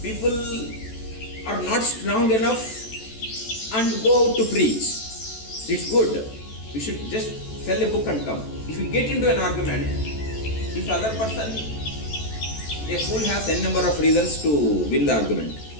people are not strong enough and go out to preach. It's good. We should just sell a book and come. If you get into an argument, if other person, a fool has n number of reasons to win the argument.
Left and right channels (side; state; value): right; late; 14 ms